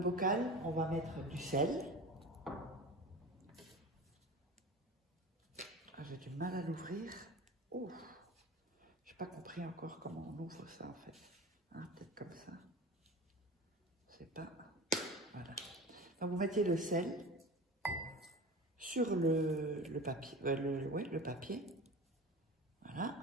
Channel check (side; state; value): both; normal; correlation 0.33